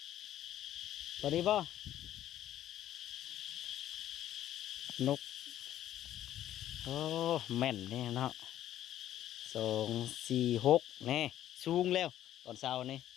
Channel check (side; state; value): right; quieter; 12.2 dB